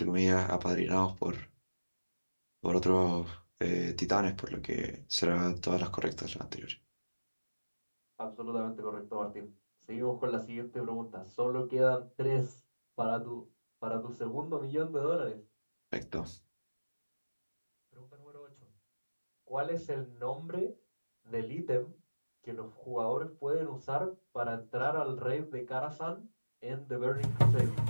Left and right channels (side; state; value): both; inverted; correlation -1.00